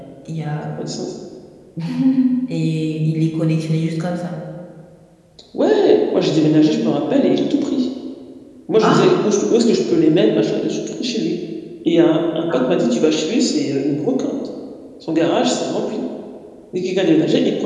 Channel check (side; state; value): both; identical; correlation 1.00